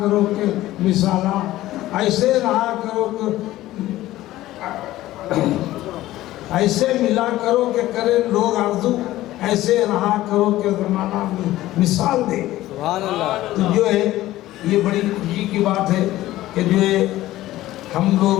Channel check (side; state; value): right; quieter; 15.6 dB